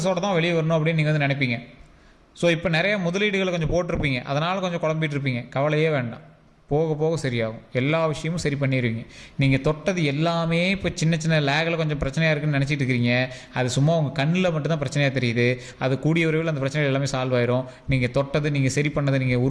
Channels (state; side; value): identical; both; correlation 1.00